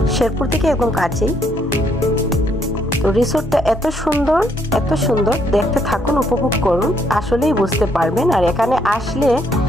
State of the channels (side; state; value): both; normal; correlation 0.71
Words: শেরপুর থেকে একদম কাছেই। তো রিসোর্টটা এত সুন্দর, দেখতে থাকুন, উপভোগ করুন, আসলেই বুঝতে পারবেন। আর এখানে আসলে